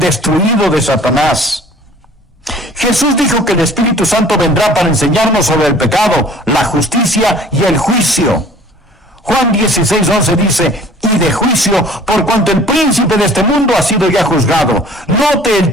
de Satanás. Jesús dijo que el Espíritu Santo vendrá para enseñarnos sobre el pecado, la justicia y el juicio. Juan 16:11 dice, y de juicio, por cuanto el príncipe de este mundo ha sido ya juzgado. Note el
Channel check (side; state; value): both; normal; correlation 0.50